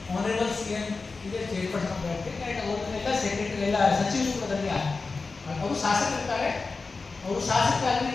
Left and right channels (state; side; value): quieter; right; 4.1 dB